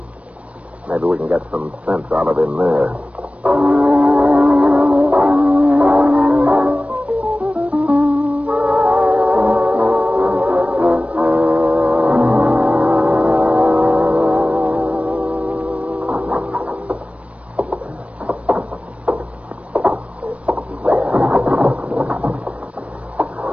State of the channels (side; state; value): left; late; 0.064 ms